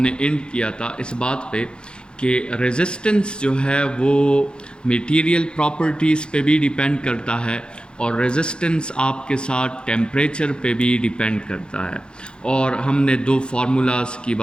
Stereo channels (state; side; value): late; right; 0.051 ms